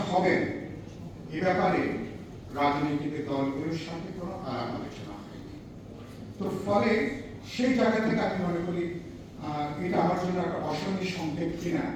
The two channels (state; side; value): identical; both; correlation 1.00